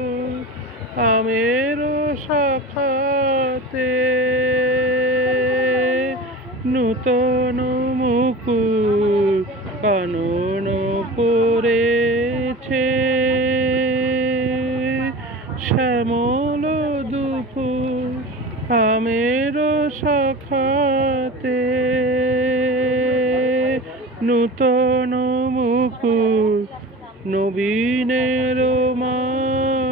আমের শাখাতে, নূতন মুকুল কানন পড়েছে শ্যামল দুকুল আমের শাখাতে, নূতন মুকুল নবীনের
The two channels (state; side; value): normal; both; correlation 0.33